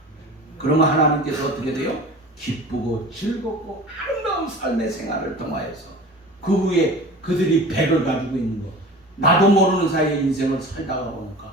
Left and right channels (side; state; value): both; normal; correlation 0.38